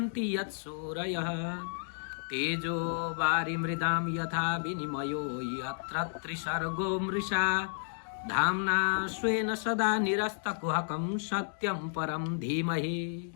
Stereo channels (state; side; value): silent; right; digital silence